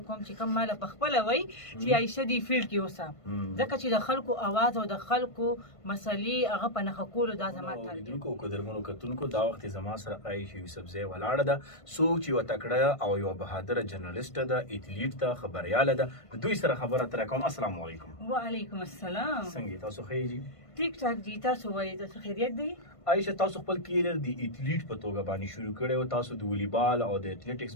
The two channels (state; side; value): late; right; 1.5 ms